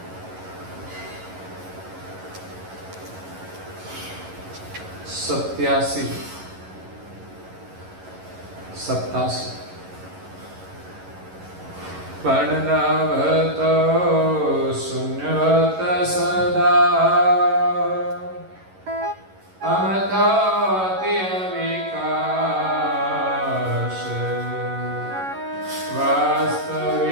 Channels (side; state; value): left; late; 11 ms